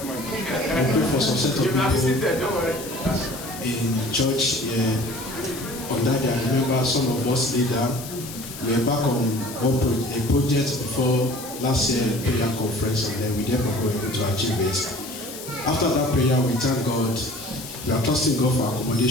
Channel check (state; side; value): noise; left; hiss, 12 dB below the sound